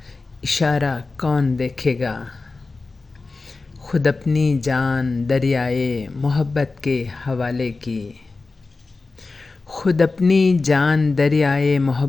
इशारा कौन देखेगा। खुद अपनी जान दरियाए मोहब्बत के हवाले की। खुद अपनी जान दरियाए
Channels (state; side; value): quieter; right; 3.8 dB